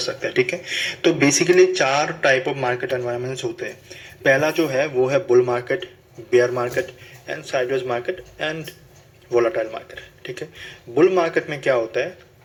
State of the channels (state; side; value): identical; both; correlation 1.00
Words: हैं। ठीक है, तो basically 4 type of market environments होते हैं। पहला जो है वो है bull market, bear market and sideways market and volatile market. ठीक है, बुल मार्केट में क्या होता है,